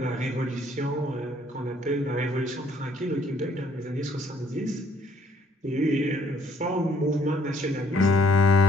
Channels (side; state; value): both; normal; correlation 0.64